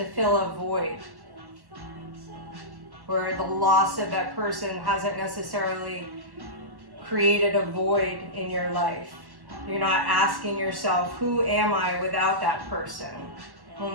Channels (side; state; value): left; late; 1.1 ms